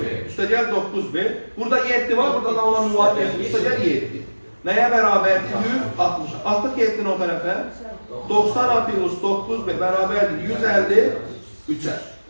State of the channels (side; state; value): both; inverted; correlation -1.00